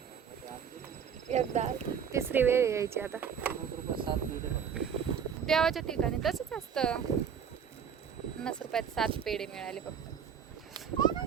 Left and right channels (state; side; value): quieter; left; 7.6 dB